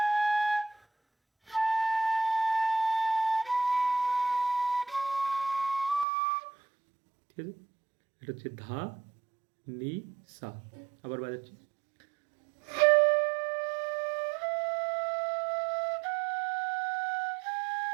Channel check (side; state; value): left; drops out; at 6.1 s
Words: ঠিক আছে। এটা হচ্ছে ধা, নি, সা। আবার বাজাচ্ছি।